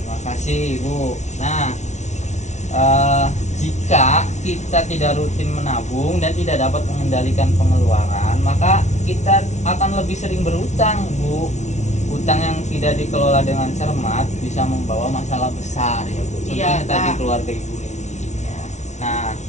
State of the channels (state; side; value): late; right; 0.33 ms